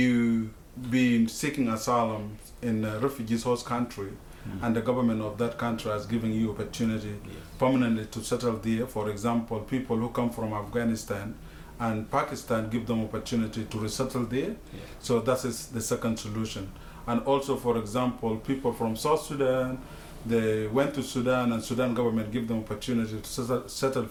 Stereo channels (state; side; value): identical; both; correlation 1.00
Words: been seeking asylum in a refugee's host country, and the government of that country has given you opportunity permanently to settle there. For example, people who come from Afghanistan and Pakistan give them opportunity to resettle there. So that is the second solution. And also, for example, people from South Sudan, they went to Sudan and Sudan government give them opportunity to settle